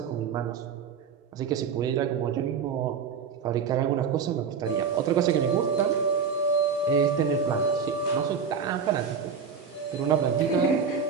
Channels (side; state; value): left; quieter; 6.2 dB